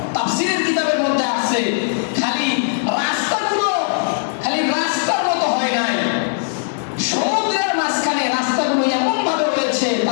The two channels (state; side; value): silent; right; digital silence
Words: তাফসীরের কিতাবের মধ্যে আছে খালি রাস্তার মতো হয় নাই, সমুদ্রের মাঝখানে রাস্তাগুলো এমন ভাবে হয়েছে,